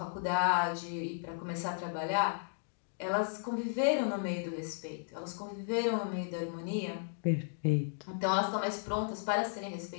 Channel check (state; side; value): silent; right; digital silence